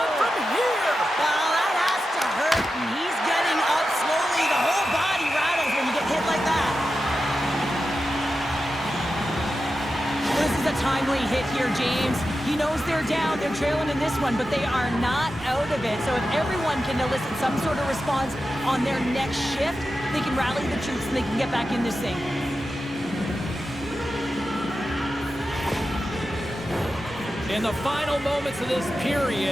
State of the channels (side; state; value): both; normal; correlation 0.91